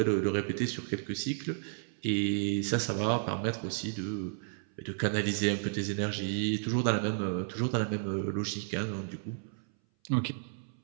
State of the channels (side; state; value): left; silent; 56 dB below the other